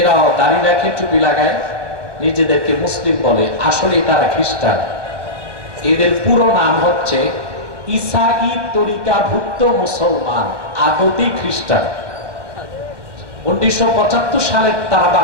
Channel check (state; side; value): late; left; 1.1 ms